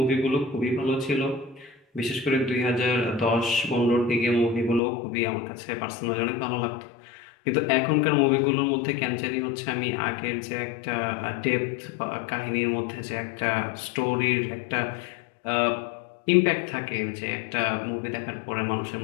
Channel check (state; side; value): drops out; right; at 4.8 s